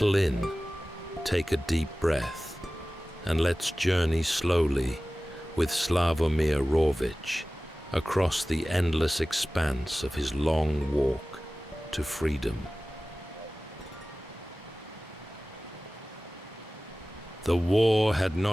in, take a deep breath, and let's journey slowly with Sławomir Rawicz across the endless expanse of his long walk to freedom. The war had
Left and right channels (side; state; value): both; normal; correlation 0.97